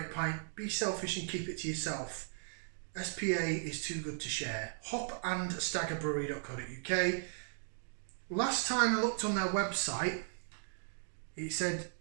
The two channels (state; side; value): silent; left; digital silence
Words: pint. Be selfish and keep it to yourself. SPA is too good to share. hopandstaggerbrewery.co.uk. Last time I looked on their website, it said